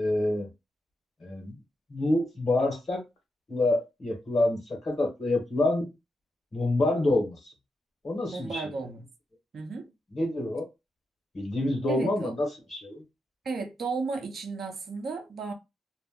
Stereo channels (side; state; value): both; normal; correlation 0.85